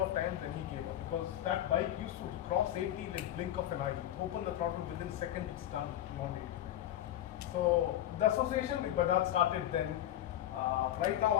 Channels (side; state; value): right; quieter; 12.5 dB